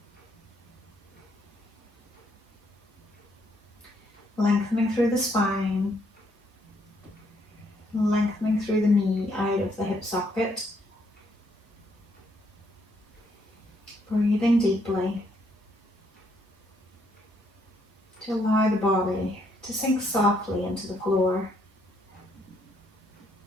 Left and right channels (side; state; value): both; normal; correlation 0.72